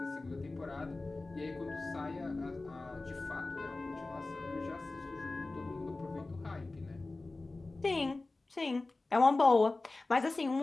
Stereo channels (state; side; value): quieter; right; 3.2 dB